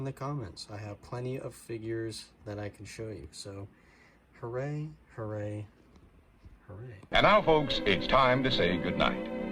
the comments. I have plenty of figures that I can show you. So, hooray, hooray, hooray. And now, folks, it's time to say goodnight.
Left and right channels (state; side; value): identical; both; correlation 1.00